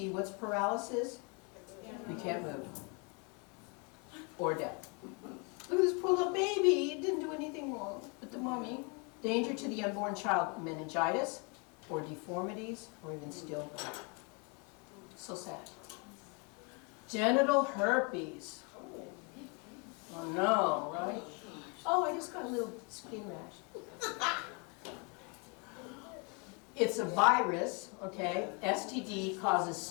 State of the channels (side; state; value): right; quieter; 33.6 dB